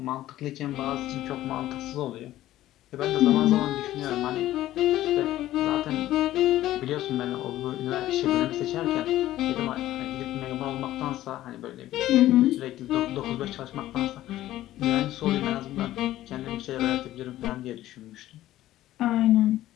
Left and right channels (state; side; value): quieter; right; 14.4 dB